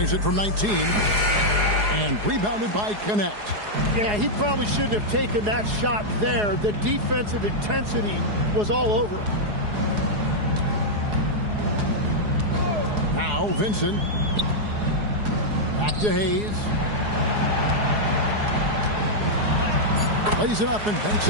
it from 19. And rebounded by Connect. Yeah, he probably shouldn't have taken that shot there. The defensive intensity was all over him. Now Vincent. Back to Hayes. Plays it up and banks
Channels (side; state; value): left; late; 4.8 ms